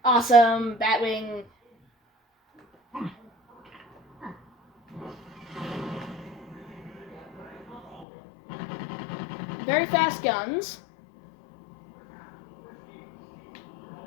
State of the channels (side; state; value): right; drops out; at 8.1 s